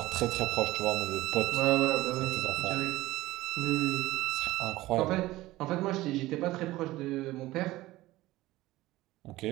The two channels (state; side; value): quieter; left; 17.7 dB